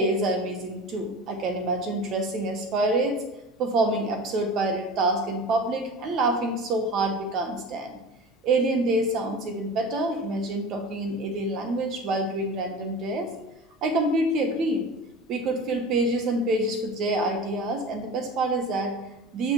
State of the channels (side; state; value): both; normal; correlation 0.34